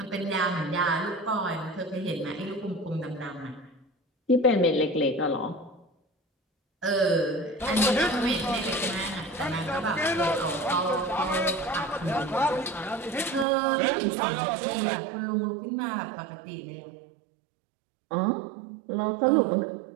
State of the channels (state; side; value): drops out; left; at 13.5 s